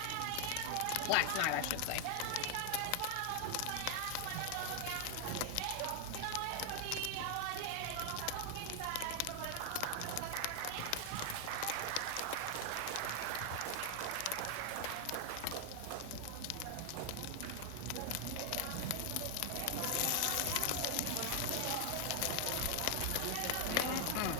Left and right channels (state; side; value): different; both; correlation 0.00